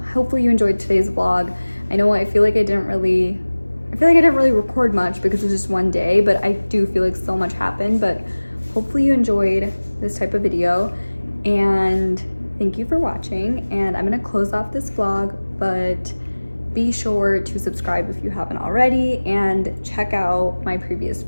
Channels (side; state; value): both; inverted; correlation -1.00